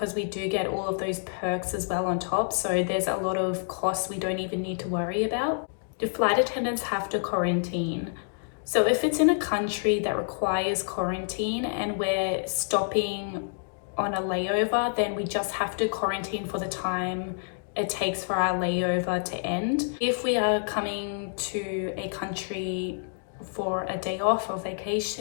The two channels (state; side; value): silent; right; digital silence